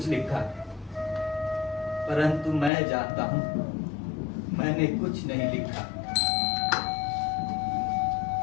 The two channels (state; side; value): drops out; right; at 2.7 s